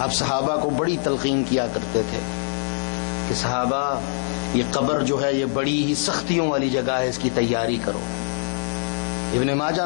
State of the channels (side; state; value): right; silent; 63 dB below the other